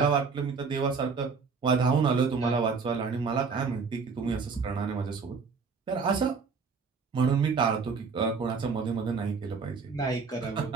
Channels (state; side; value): quieter; left; 5.1 dB